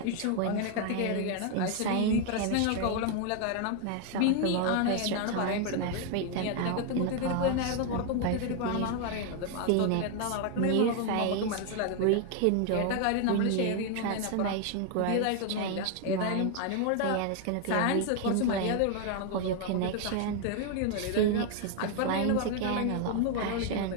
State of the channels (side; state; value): both; different; correlation 0.00